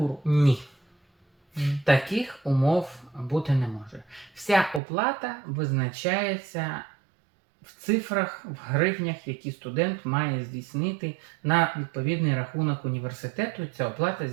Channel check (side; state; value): left; drops out; at 4.8 s